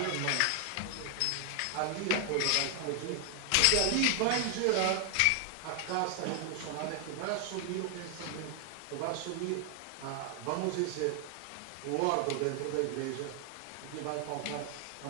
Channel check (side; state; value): both; different; correlation 0.00